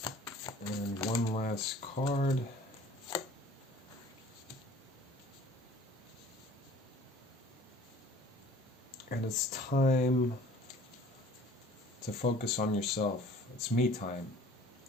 And one last card. And it's time to focus on yourself. It's me time.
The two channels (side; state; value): both; normal; correlation 0.50